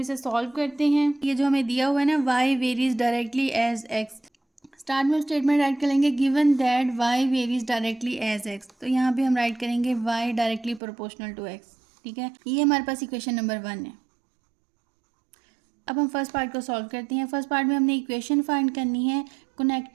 इसे सॉल्व करते हैं। ये जो हमें दिया हुआ है ना, Y varies directly as X, start में स्टेटमेंट राइट करेंगे given that Y varies directly as X, तो यहाँ पे हम राइट करेंगे Y directly proportional to X, ठीक है। ये हमारे पास इक्वेशन नंबर 1 है। अब हम फर्स्ट पार्ट को सॉल्व करते हैं। फर्स्ट पार्ट में हमने इक्वेशन फाइंड करनी है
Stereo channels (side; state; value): left; drops out; at 10.8 s